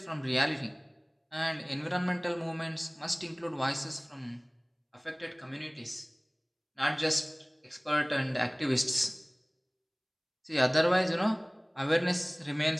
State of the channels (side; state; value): both; identical; correlation 1.00